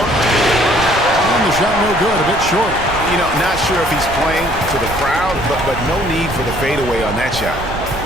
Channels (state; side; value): noise; right; rumble, 10 dB below the sound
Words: And the shot no good, a bit short. You know, not sure if he's playing to the crowd, but no need for the fadeaway on that shot.